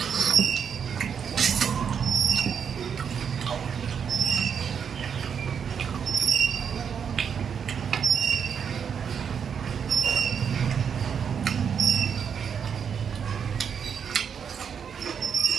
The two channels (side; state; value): left; quieter; 7.3 dB